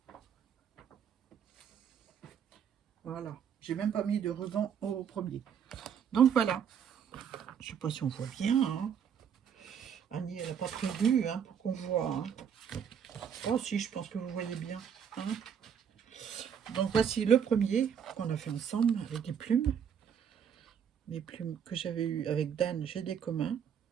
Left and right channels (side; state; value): left; quieter; 8.0 dB